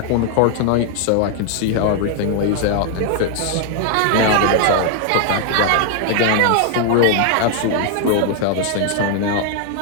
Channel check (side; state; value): both; different; correlation 0.00